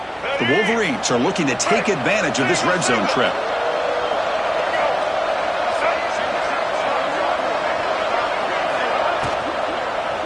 The Wolverines are looking to take advantage of this red zone trip.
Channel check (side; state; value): both; identical; correlation 1.00